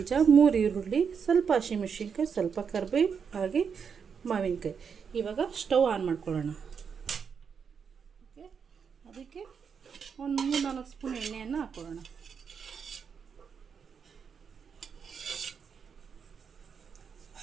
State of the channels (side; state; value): left; quieter; 6.5 dB